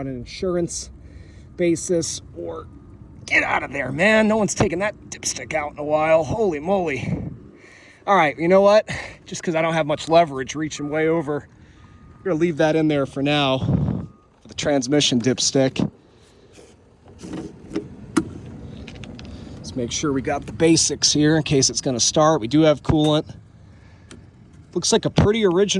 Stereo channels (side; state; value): both; identical; correlation 1.00